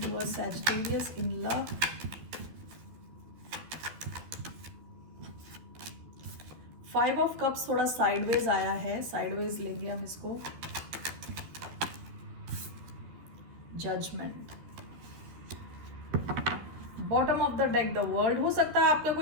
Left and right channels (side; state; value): left; late; 13 ms